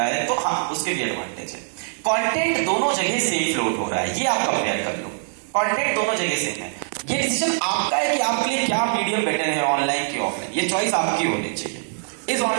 है, तो हाँ उसके भी एडवांटेज है। कंटेंट दोनों जगह सेम फ्लोट हो रहा है, ये आप कंपेयर कर लो, कंटेंट दोनों जगह सेम है। ये डिसीजन आपका है कि आपके लिए क्या मीडियम बेटर है, ऑनलाइन की ऑफलाइन, ये चॉइस आपकी होनी चाहिए। इज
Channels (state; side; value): silent; left; digital silence